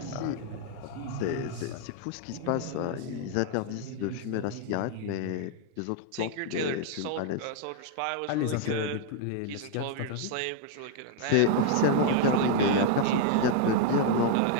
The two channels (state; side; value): different; both; correlation 0.00